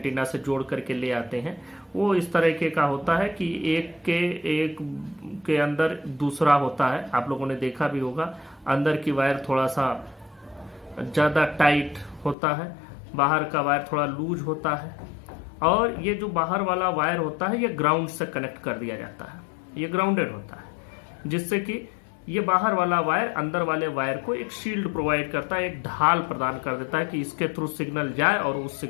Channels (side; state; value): right; drops out; at 12.4 s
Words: से जोड़ करके ले आते हैं, वो इस तरीके का होता है कि एक के अंदर दूसरा होता है। आप लोगों ने देखा भी होगा, अंदर की वायर थोड़ा सा ज्यादा टाइट होता है, बाहर का वायर थोड़ा लूज होता है, और ये जो बाहर वाला वायर होता है ये ग्राउंड से कनेक्ट कर दिया जाता है, ये ग्राउंडेड होता है, जिससे कि ये बाहर वाला वायर अंदर वाले वायर को एक शील्ड प्रोवाइड करता है, एक ढाल प्रदान कर देता है कि इसके थ्रू सिग्नल जाए और उस